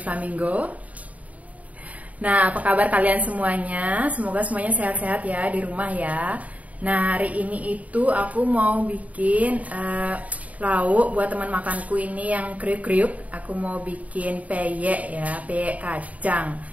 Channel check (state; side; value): late; left; 0.070 ms